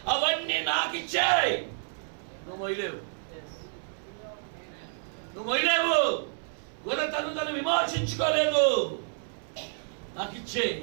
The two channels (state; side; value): silent; left; 58 dB below the other